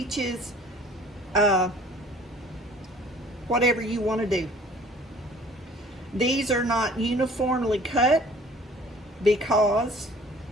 whatever you want to do. These are not uniformly cut because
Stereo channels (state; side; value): normal; both; correlation 0.51